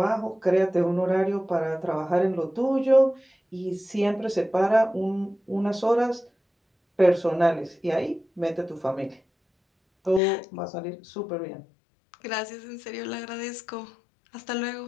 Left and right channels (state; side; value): drops out; right; at 10.2 s